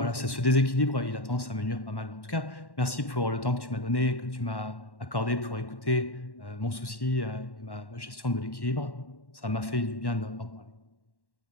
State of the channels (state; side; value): late; right; 1.1 ms